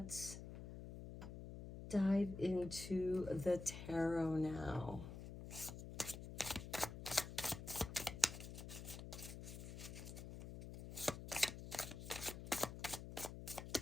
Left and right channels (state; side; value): noise; left; hum, 9 dB below the sound